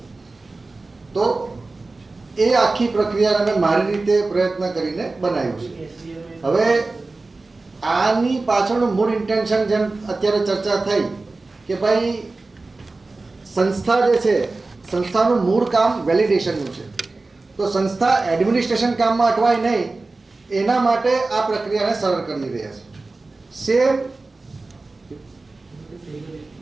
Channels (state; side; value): quieter; left; 3.4 dB